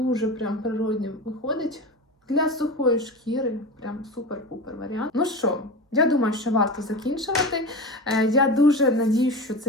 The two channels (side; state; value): both; normal; correlation 0.27